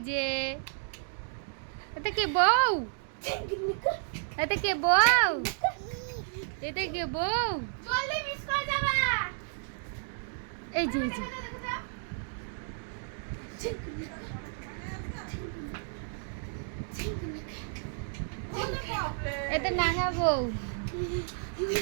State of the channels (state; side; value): silent; left; digital silence